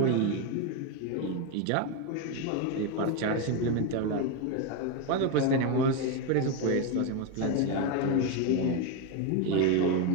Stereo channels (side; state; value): both; different; correlation 0.02